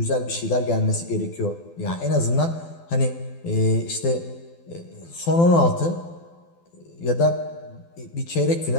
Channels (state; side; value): late; right; 12 ms